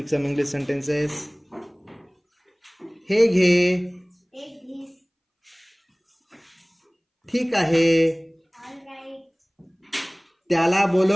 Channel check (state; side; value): identical; both; correlation 1.00